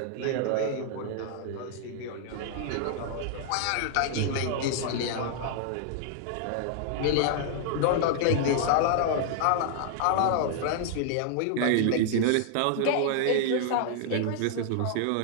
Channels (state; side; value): different; both; correlation -0.01